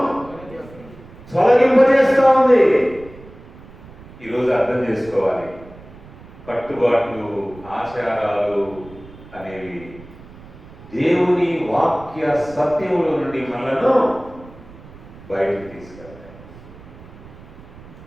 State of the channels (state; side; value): noise; right; rumble, 19 dB below the sound